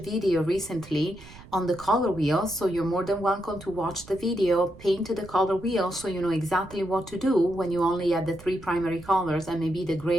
recently on the color wheel, so you're more than welcome to watch the video, paint the color wheel so you know exactly what to do when you only have the three primary colors and maybe the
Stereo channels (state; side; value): noise; right; rumble, 19 dB below the sound